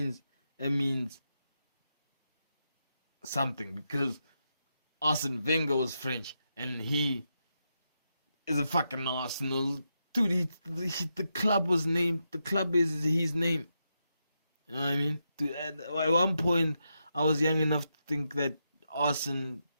That means something, because Arsene Wenger was French and he is a fucking Arsenal. Dude, the club was named, the club is his name. You know what I mean? Dude, at one point, I was young enough to think that Arsene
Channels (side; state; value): both; inverted; correlation -0.85